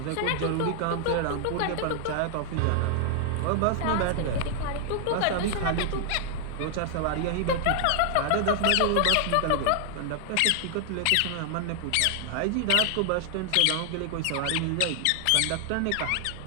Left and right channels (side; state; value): both; different; correlation 0.00